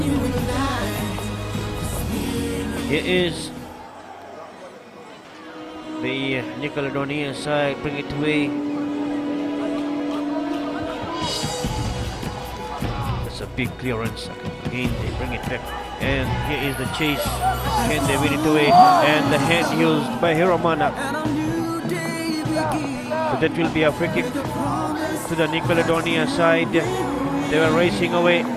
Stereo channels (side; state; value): both; identical; correlation 1.00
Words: Here is the Nickelodonia side, bring it away. That's a big clearance. Again, they bring it back. And here is the chase. Can they win it away? And the hand used by Hiromana. So that will be a free kick to the Nickelodonia side. They were racing away.